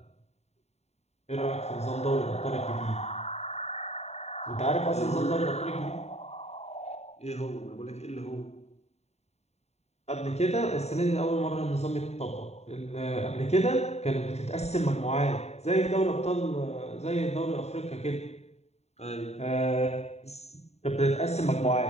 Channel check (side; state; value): right; late; 0.31 ms